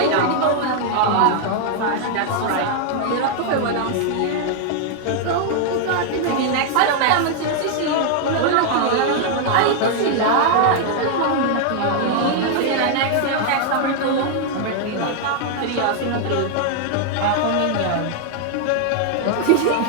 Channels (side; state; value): both; different; correlation 0.00